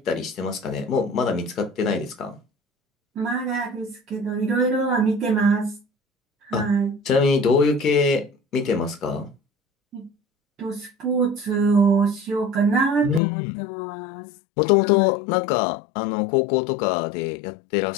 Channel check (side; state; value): right; drops out; at 13.2 s